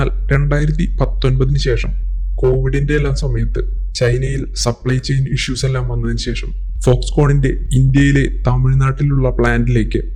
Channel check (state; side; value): identical; both; correlation 1.00